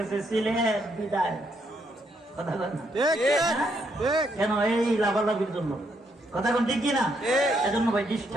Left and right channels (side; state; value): both; normal; correlation 0.75